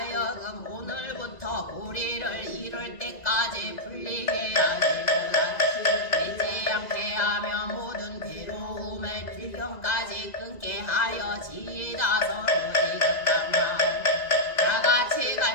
오늘부터 보리를 이룰 때까지 풀리게 하시고자 되지 않게 하며 모든 괴로움을 필경까지 끊게 하여 지이다. 서로 지득한 다같이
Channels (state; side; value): late; right; 2.0 ms